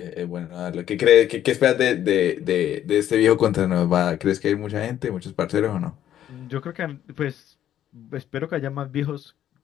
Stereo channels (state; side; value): quieter; right; 11.2 dB